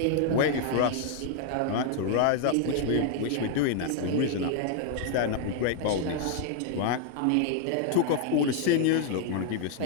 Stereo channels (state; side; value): different; both; correlation 0.00